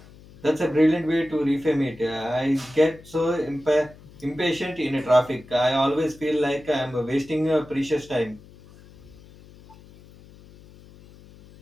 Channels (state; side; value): noise; left; hum, 22 dB below the sound